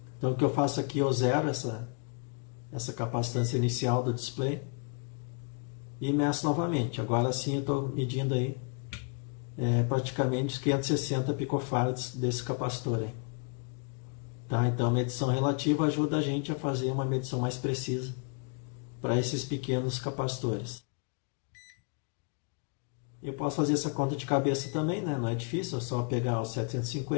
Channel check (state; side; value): quieter; right; 35.2 dB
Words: Então o que eu faço aqui, eu zero essa capacitância inicial do display e meço novamente. Agora sim eu estou medindo aí praticamente 560 picofarads desse capacitor aí. Tá? Então a medição relativa ajuda a gente a fazer uma medição mais precisa para esses pequenos capacitores. Eu posso fazer essa conta de cabeça também, né? Não é difícil, é só pegar os